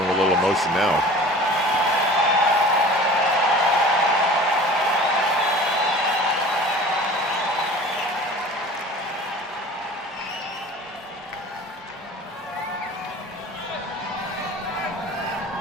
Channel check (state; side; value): normal; both; correlation 0.42